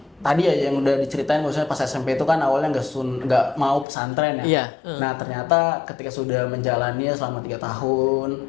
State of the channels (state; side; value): drops out; right; at 3.9 s